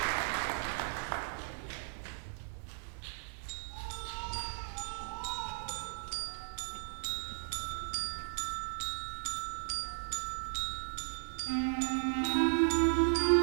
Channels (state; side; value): silent; left; digital silence